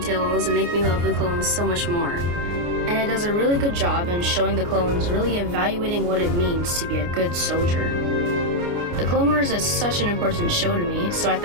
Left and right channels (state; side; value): late; left; 29 ms